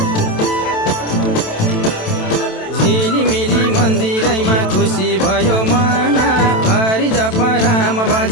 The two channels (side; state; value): right; late; 27 ms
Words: झिलिमिली मन्दिरैमा खुसी भयो मन हरि जप राम भज